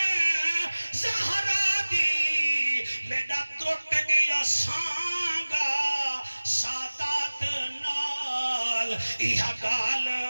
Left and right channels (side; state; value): both; inverted; correlation -1.00